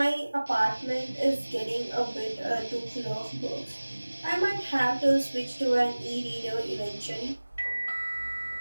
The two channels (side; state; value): both; inverted; correlation -1.00